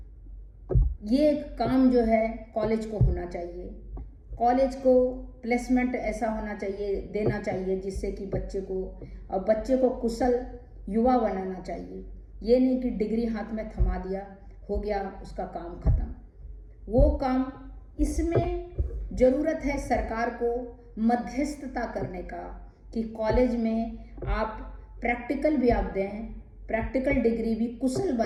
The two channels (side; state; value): both; identical; correlation 1.00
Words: ये काम जो है कॉलेज को होना चाहिए। कॉलेज को प्लेसमेंट ऐसा होना चाहिए, देना चाहिए, जिससे कि बच्चे को कुशल युवा बनाना चाहिए। ये नहीं कि डिग्री हाथ में थमा दिया, हो गया, उसका काम खत्म। वो काम, इसमें ज़रूरत है सरकार को मध्यस्थता करने का, कि कॉलेज में आप प्रैक्टिकल भी आप दें, प्रैक्टिकल डिग्री भी कुशल